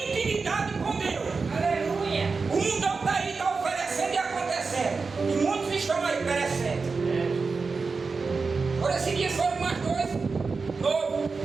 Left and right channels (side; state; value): left; quieter; 4.5 dB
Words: intimidade com Deus. Aleluia. O mundão está aí, está oferecendo e acontecendo. E muitos estão aí perecendo. Por esse dia foram mais dois novos,